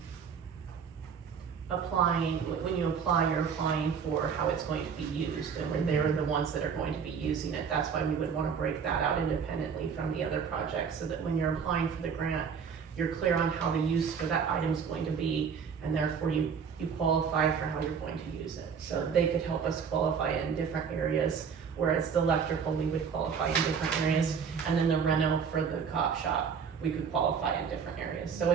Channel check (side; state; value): left; quieter; 6.5 dB